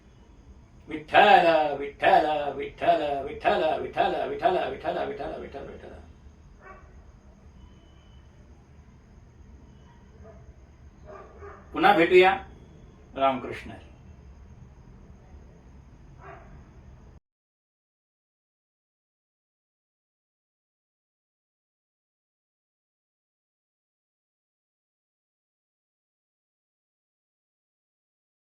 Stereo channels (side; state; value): both; identical; correlation 1.00